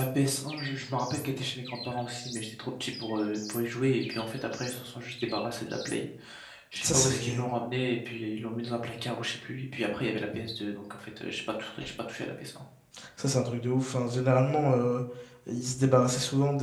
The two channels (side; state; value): both; identical; correlation 1.00